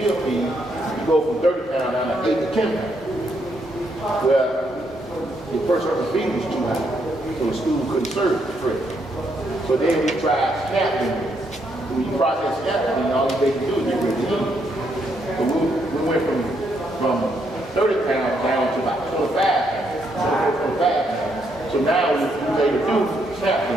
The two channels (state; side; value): normal; both; correlation 0.76